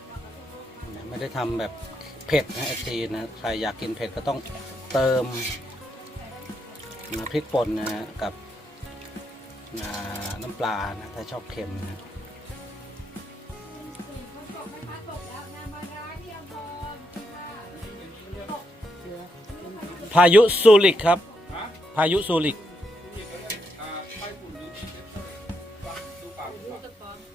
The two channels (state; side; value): normal; both; correlation 0.80